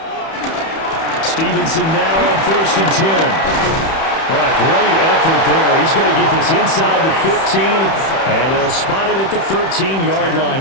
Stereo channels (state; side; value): late; right; 31 ms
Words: Stevenson now on 1st and 10. What a great effort there. He's going to get this inside the 15, and they'll spot it at the 13-yard line.